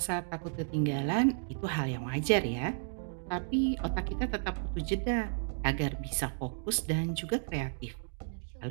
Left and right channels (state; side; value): silent; left; digital silence